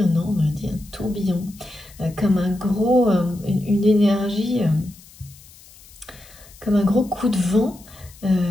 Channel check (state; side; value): noise; left; hiss, 23 dB below the sound